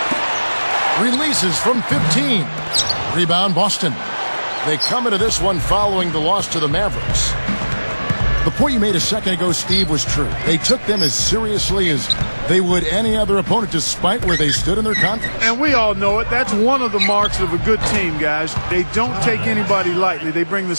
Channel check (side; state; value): both; inverted; correlation -1.00